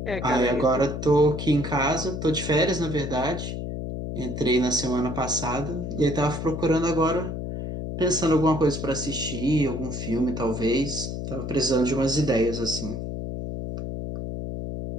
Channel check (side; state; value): left; noise; hum, 5 dB below the sound